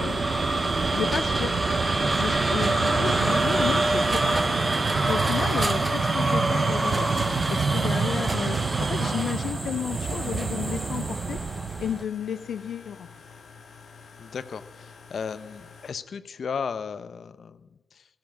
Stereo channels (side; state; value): both; normal; correlation 0.87